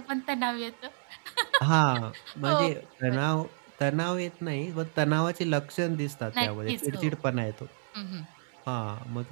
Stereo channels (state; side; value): silent; left; digital silence